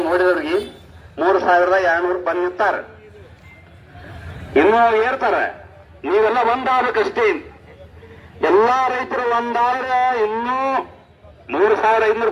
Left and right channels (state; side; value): identical; both; correlation 1.00